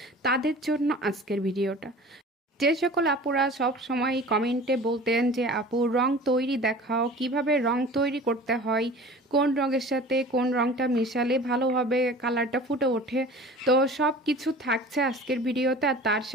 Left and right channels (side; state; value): both; normal; correlation 0.41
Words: তাদের জন্য আজকের ভিডিওটা। যে সকল আপুরা সব সময় কমেন্টে বলতেন যে আপু রং তৈরি দেখাও, কিভাবে রং তৈরি করতে হয়, কোন রঙের সাথে কোন রংটা মিশালে ভালোভাবে কালারটা ফুটে ওঠে, তো সব কিছু থাকছে আজকের ভিডিওতে। আর তার